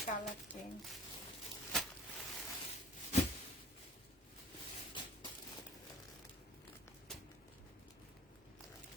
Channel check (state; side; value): normal; both; correlation 0.46